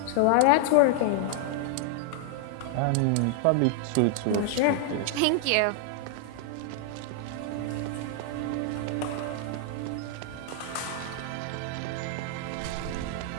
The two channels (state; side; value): different; both; correlation 0.00